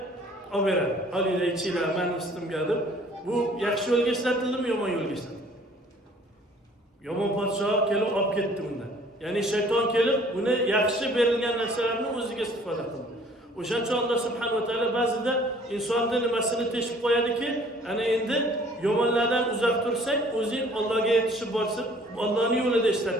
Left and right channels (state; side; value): normal; both; correlation 0.55